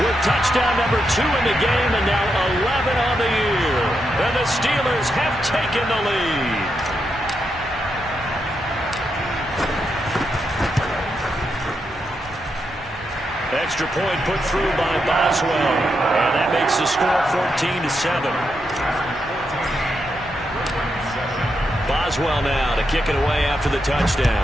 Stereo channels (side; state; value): both; normal; correlation 0.83